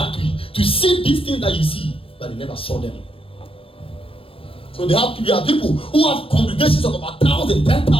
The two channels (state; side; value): late; right; 0.27 ms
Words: to see these things that you see, but they never saw them. So there are people who have congregations of about 1,000,